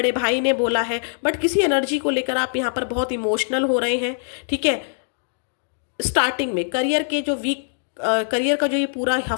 भाई ने बोला है, बट किसी एनर्जी को लेकर आप यहाँ पर बहुत इमोशनल हो रहे हैं। ठीक है, स्टार्टिंग में करियर का जो ये पूरा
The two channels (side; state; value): right; silent; digital silence